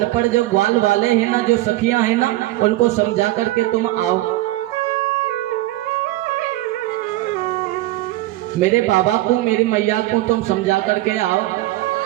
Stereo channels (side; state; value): left; quieter; 17.4 dB